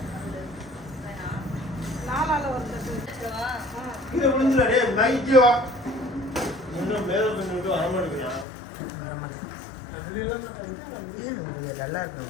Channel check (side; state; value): right; drops out; at 8.5 s